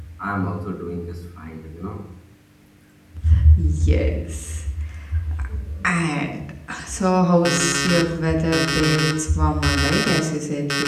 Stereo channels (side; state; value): both; identical; correlation 1.00